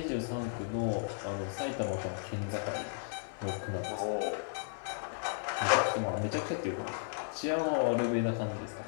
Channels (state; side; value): silent; right; 55 dB below the other